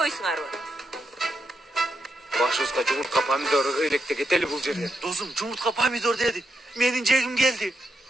Башыбызга жумуртка помидор ыйлекте кетели бул жерден. Досум, жумуртка помидор деди. Менин жегим келди.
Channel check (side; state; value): both; normal; correlation 0.83